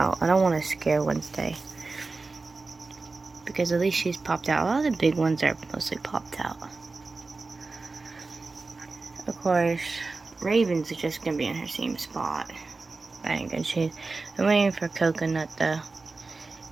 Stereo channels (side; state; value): left; quieter; 3.8 dB